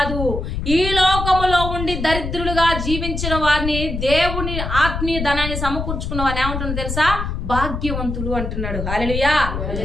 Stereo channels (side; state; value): left; noise; rumble, 4 dB below the sound